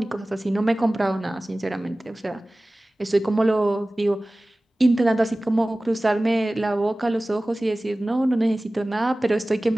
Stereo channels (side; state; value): both; normal; correlation 0.98